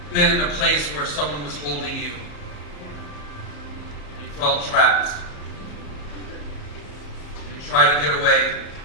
been in a place where someone was holding you? You felt trapped. You tried to get away.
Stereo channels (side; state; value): right; late; 34 ms